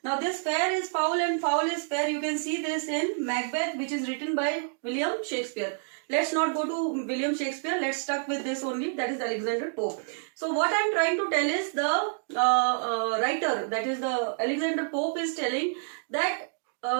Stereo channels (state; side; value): silent; left; digital silence